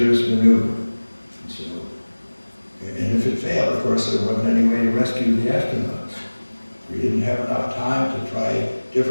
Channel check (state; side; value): inverted; both; correlation -1.00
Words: maneuver. And if it failed, of course, there wasn't any way to rescue the astronauts. We didn't have enough time to try